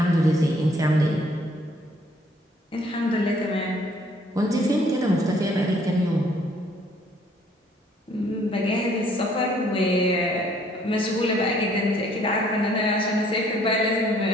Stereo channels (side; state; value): both; normal; correlation 0.62